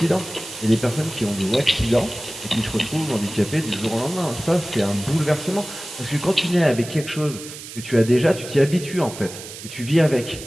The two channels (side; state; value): right; noise; hiss, 13 dB below the sound